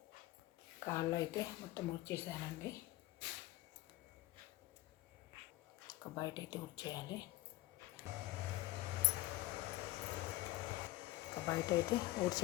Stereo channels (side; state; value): right; quieter; 17.7 dB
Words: కాళ్ళు అయితే మొత్తం ఊడ్చేసానండి. ఒక బయట అయితే ఊడ్చేయాలి. ఒక బయట అయితే